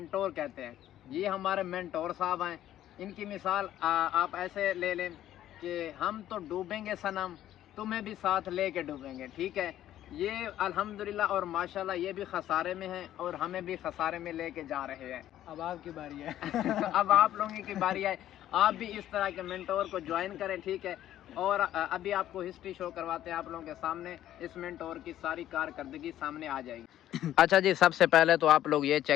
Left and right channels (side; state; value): right; quieter; 12.4 dB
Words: کہتے ہیں. یہ ہمارے مینٹور صاحب ہیں. ان کی مثال آپ ایسے لے لیں کہ ہم تو ڈوبیں گے صنم، تمہیں بھی ساتھ لے کے ڈوبیں گے. ٹھیک ہے، یہ الحمدللہ اور ماشاءاللہ یہ بھی خسارے میں ہیں اور ہمیں بھی خسارے میں لے کے جا رہے ہیں. اب آپ کی باری ہے. اب آپ لوگوں کی باری ہے. آپ بھی اس طرح کے مینٹور کو جوائن کریں. ٹھیک ہے، اور ابھی آپ کو ہسٹری شو کرواتے ہیں آپ لوگوں کے سامنے. اس مینٹور کی ساری کارکردگی سامنے آ جائے گی. اچھا جی، سب سے پہلے تو آپ لوگ یہ